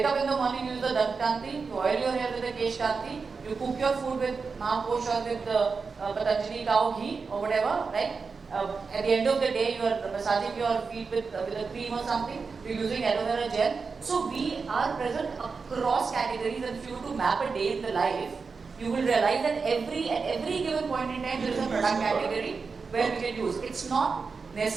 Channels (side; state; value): left; quieter; 4.9 dB